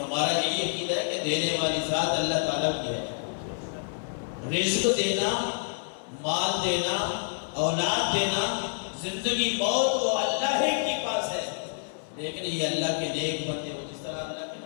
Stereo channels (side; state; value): right; silent; digital silence